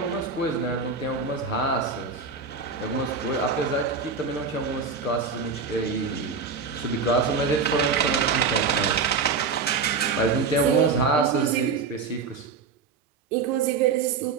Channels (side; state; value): left; quieter; 5.1 dB